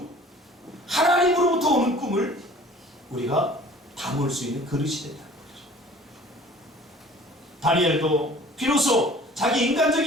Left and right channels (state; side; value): normal; both; correlation 0.49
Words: 하나님으로부터 오는 꿈을 우리가 담을 수 있는 그릇이 된다는 거죠. 다니엘도 비로소 자기